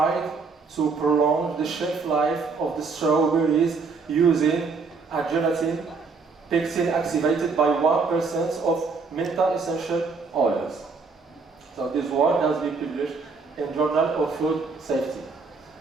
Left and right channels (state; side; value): quieter; left; 4.5 dB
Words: to prolong the shelf life of the strawberries using a gelatin pectin activated by 1% of menta essential oils. So this work has been published in Journal of Food Safety.